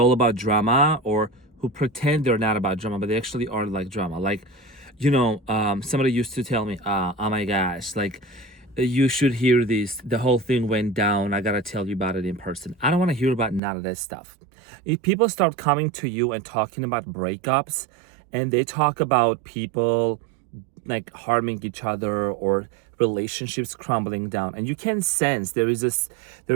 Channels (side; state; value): left; drops out; at 13.6 s